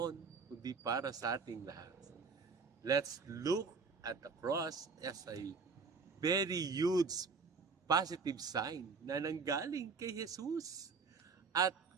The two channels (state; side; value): quieter; left; 4.8 dB